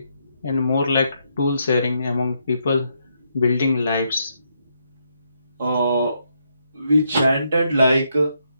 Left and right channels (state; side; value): inverted; both; correlation -0.77